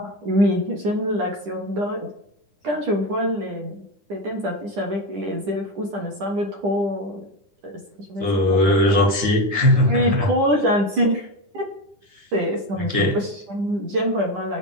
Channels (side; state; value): left; late; 10 ms